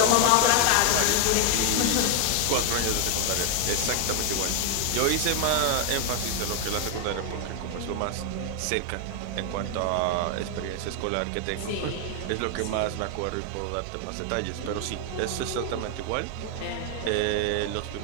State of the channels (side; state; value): both; different; correlation 0.00